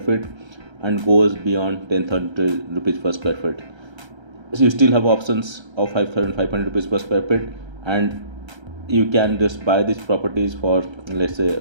feet and goes beyond 10,000 rupees per square feet. So you still have options of 5,500 rupees per square feet, and you can just buy these properties for let's say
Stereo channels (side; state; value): left; late; 1.3 ms